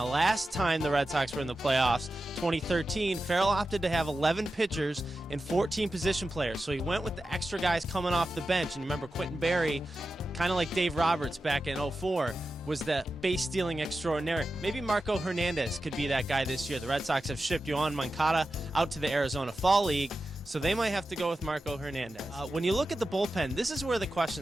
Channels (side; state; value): both; normal; correlation 0.92